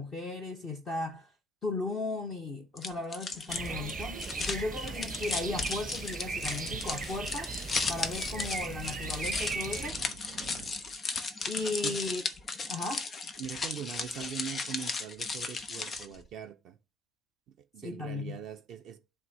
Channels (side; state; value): both; normal; correlation 0.64